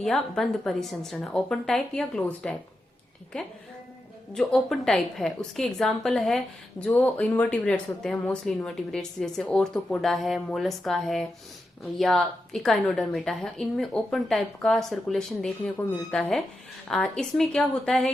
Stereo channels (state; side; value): normal; both; correlation 0.88